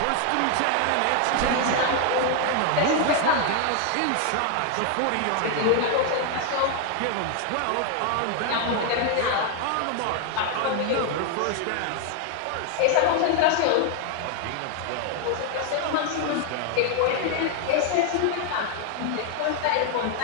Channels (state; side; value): different; both; correlation 0.00